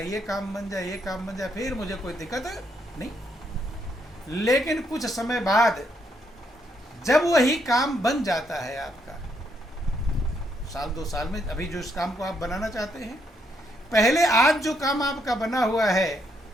काम बन जाए, ये काम बन जाए, फिर मुझे कोई दिक्कत नहीं। लेकिन कुछ समय बाद जब वही काम बन जाता है आपका, 1-2 साल में, अभी जो इस काम को आप बनाना चाहते हैं, पहले आज जो काम आपका बना हुआ है,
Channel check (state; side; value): normal; both; correlation 0.75